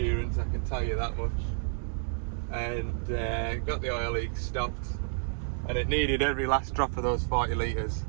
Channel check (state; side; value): silent; left; digital silence